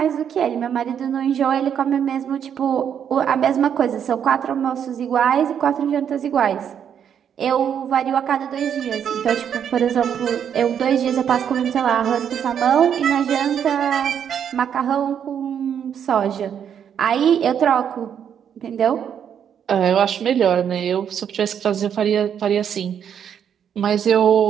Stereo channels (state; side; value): quieter; left; 8.5 dB